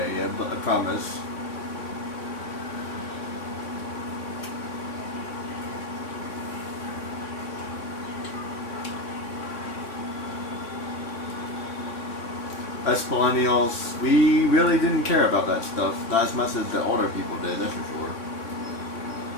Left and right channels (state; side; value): late; right; 3.6 ms